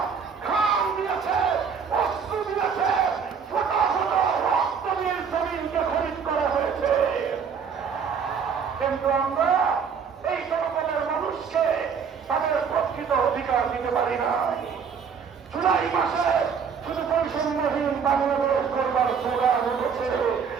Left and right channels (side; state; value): left; quieter; 6.5 dB